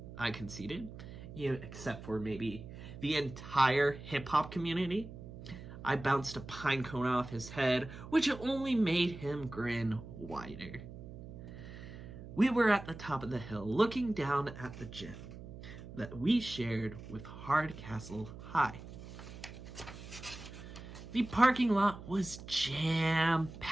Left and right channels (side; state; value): right; noise; hum, 13 dB below the sound